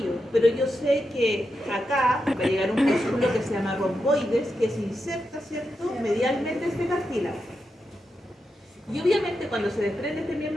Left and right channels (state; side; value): normal; both; correlation 0.87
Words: pero yo sé que acá va a llegar un músculo que se llama romboides, que se inserta, ¿cierto?, medialmente este cartílago. Y obviamente cuando se desprende este